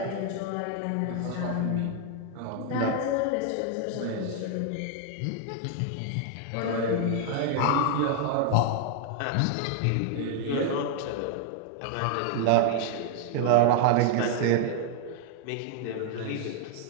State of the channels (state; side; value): different; both; correlation 0.00